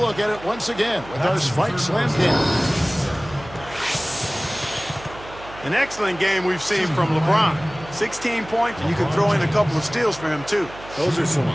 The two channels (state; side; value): noise; right; hum, 17 dB below the sound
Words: at it once again with our Spike Slam Cam. An excellent game we've seen from LeBron. 16 points, and you can throw in a couple of steals for him, too. Those are some